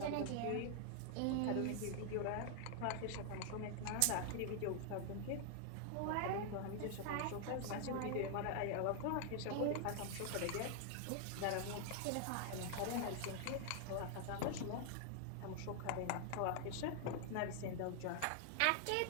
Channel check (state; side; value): different; both; correlation 0.00